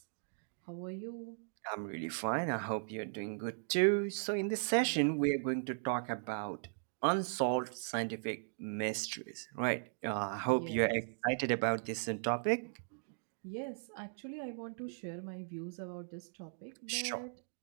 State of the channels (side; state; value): left; silent; digital silence